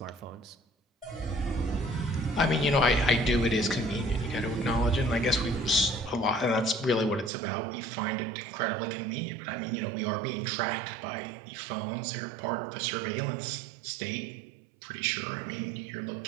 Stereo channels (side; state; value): left; drops out; at 7.3 s